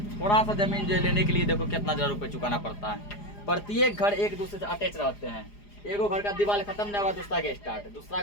थोड़ा सा जमीन जो लेने के लिए देखो कितना हजार रुपये चुकाना पड़ता है। प्रत्येक घर एक दूसरे से अटैच रहते हैं, एगो घर का दीवार खत्म नहीं हुआ दूसरा के स्टार्ट, दूसरा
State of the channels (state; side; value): late; right; 4.9 ms